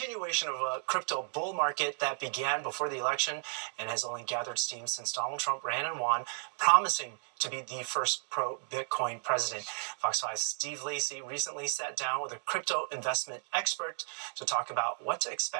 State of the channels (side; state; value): left; silent; 55 dB below the other